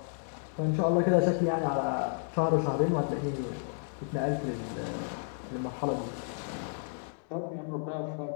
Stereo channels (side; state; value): right; silent; digital silence